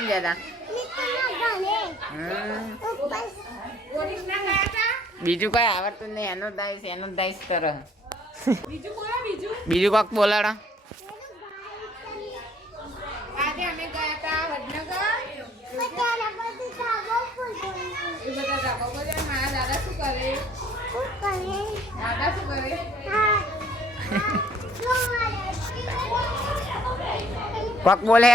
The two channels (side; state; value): both; normal; correlation 0.59